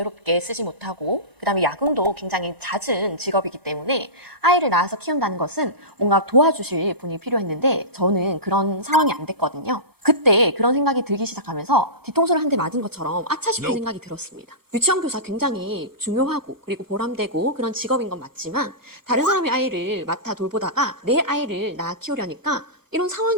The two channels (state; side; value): late; left; 1.0 ms